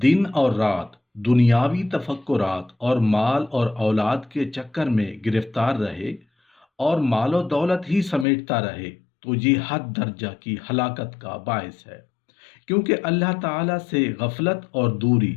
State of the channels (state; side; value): drops out; right; at 8.2 s